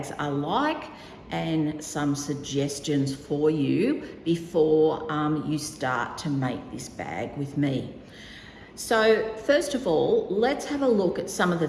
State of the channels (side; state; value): both; identical; correlation 1.00